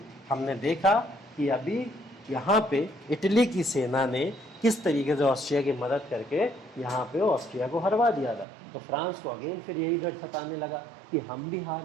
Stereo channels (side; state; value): left; drops out; at 8.5 s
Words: हमने देखा कि अभी यहाँ पे इटली की सेना ने किस तरीके से ऑस्ट्रिया की मदद करके यहाँ पे ऑस्ट्रिया को हरवा दिया था। तो फ्रांस को अगेन फिर यही डर सताने लगा कि हम भी